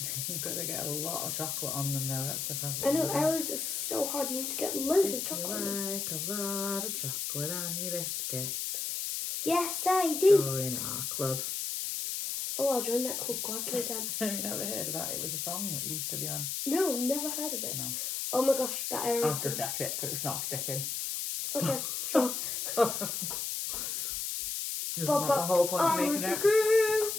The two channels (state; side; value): noise; left; hiss, 2 dB below the sound